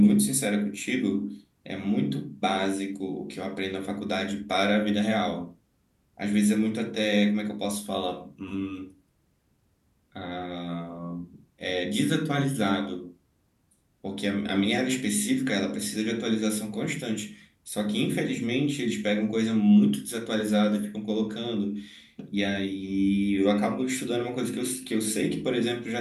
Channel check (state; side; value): identical; both; correlation 1.00